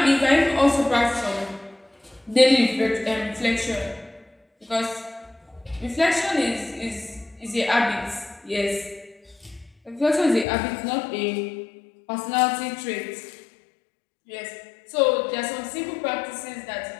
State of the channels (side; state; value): right; drops out; at 10.5 s